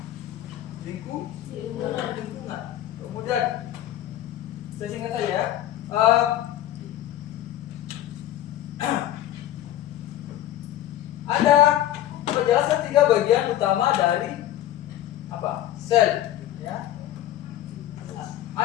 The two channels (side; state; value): right; quieter; 12.9 dB